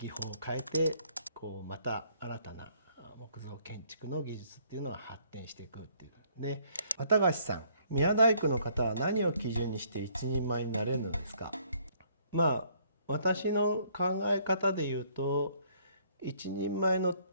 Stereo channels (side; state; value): both; inverted; correlation -0.64